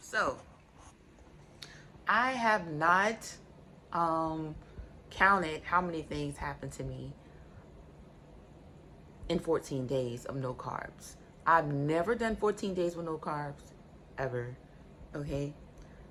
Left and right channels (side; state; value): both; identical; correlation 1.00